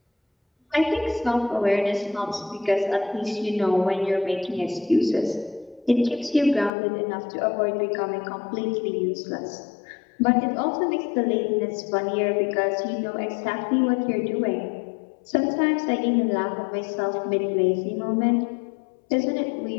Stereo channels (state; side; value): drops out; right; at 6.7 s